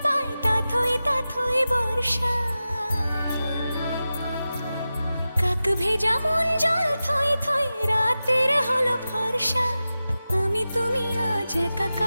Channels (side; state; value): both; inverted; correlation -0.94